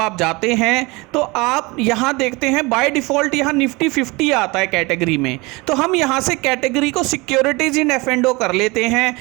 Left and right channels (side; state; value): left; quieter; 24.7 dB